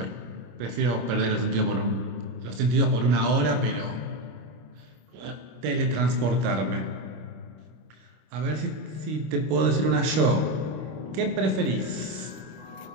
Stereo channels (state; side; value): late; left; 26 ms